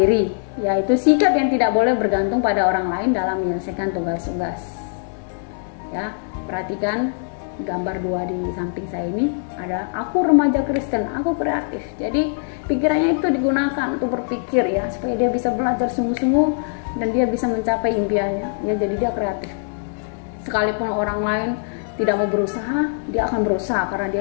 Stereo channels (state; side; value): silent; right; digital silence